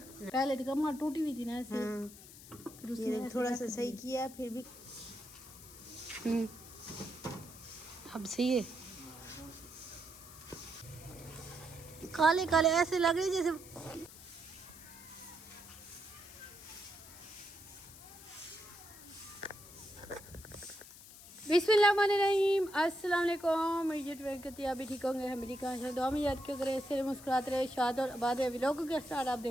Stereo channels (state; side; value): noise; left; hiss, 17 dB below the sound